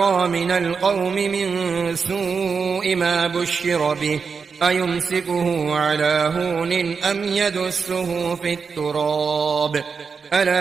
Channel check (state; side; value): quieter; left; 5.5 dB